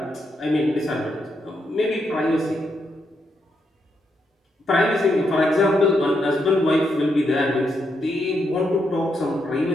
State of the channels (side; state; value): both; normal; correlation 0.80